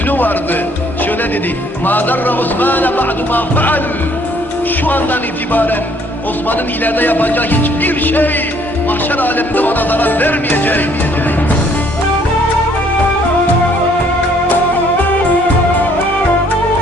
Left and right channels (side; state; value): both; normal; correlation 0.62